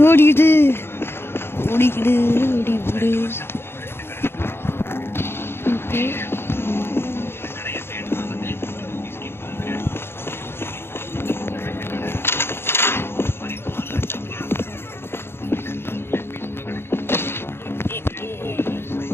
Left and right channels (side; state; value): right; late; 0.11 ms